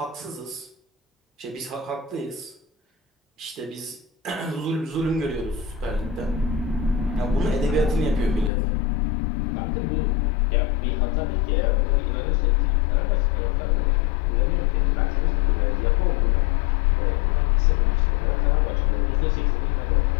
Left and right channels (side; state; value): right; drops out; at 8.5 s